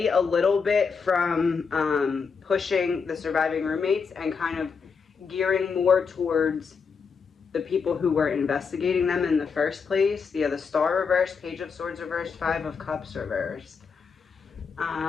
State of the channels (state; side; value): quieter; right; 5.6 dB